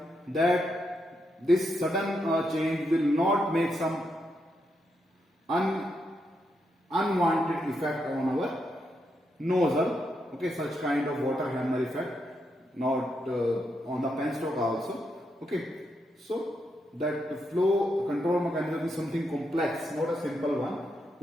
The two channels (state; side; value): normal; both; correlation 0.82